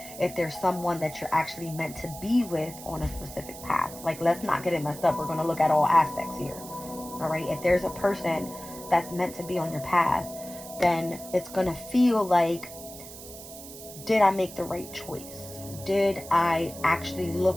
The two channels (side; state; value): right; noise; hiss, 14 dB below the sound